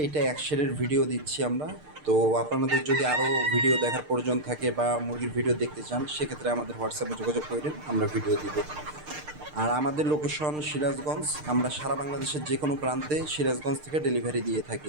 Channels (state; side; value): late; left; 6.6 ms